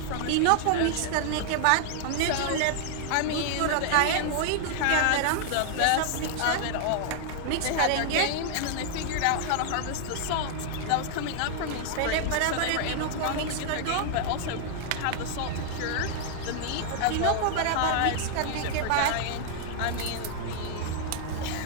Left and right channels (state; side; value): different; both; correlation -0.01